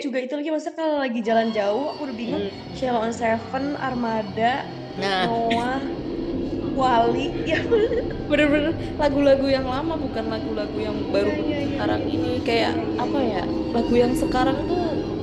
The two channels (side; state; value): both; identical; correlation 1.00